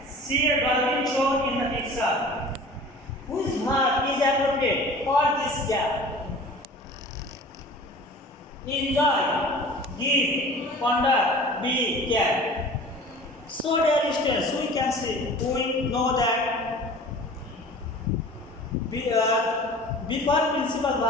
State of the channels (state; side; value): normal; both; correlation 0.43